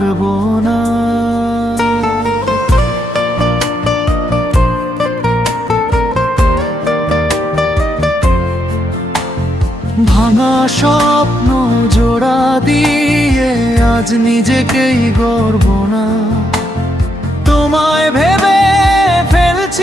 না? ভাঙা স্বপ্ন জোড়া দিয়ে আজ নিজেকেই গর্ব না। তোমায় ভেবে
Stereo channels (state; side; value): normal; both; correlation 0.78